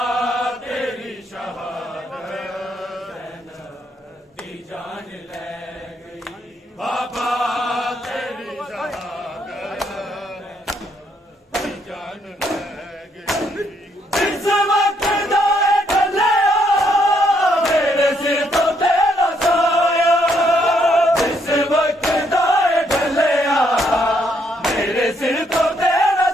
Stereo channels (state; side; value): normal; both; correlation 0.72